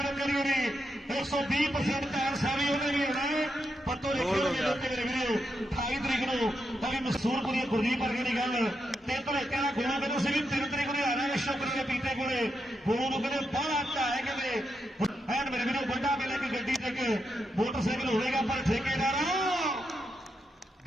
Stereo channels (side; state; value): both; normal; correlation 0.84